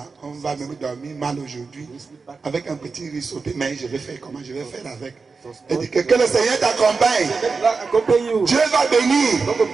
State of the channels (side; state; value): left; quieter; 4.6 dB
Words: on va même dormir mal aujourd'hui You sleep back. avec un petit risotté. Mais je vais faire comment? Je vais faire avec. Et dit que le Seigneur t'accompagne. Let God accompany you. Dieu va bénir. God will